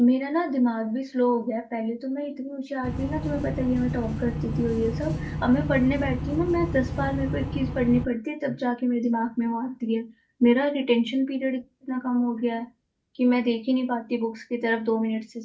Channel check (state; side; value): identical; both; correlation 1.00